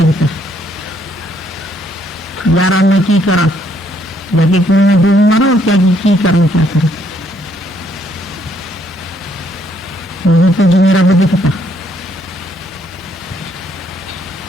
यारा मैं की करा, जाके कुएं में डूब मारो, क्या की करूं, क्या करूं? मुझे तो जो मेरा रब दिखता।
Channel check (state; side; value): normal; both; correlation 0.69